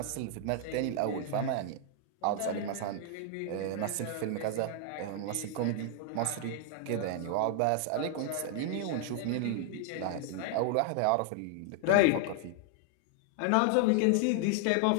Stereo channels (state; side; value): different; both; correlation 0.00